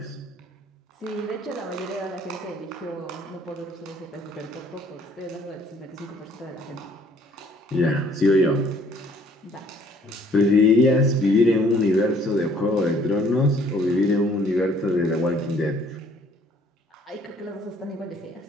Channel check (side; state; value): both; normal; correlation 0.59